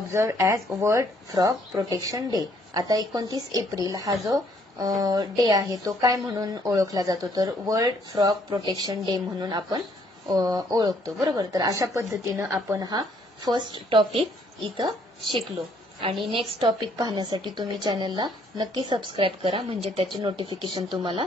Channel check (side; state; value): both; normal; correlation 0.66